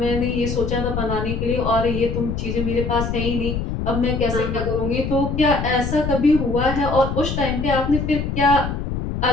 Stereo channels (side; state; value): left; noise; rumble, 3 dB below the sound